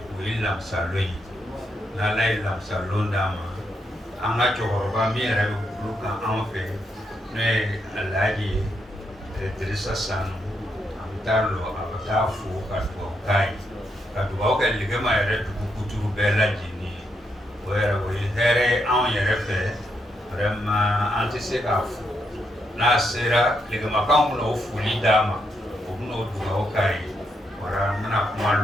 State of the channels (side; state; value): both; normal; correlation 0.80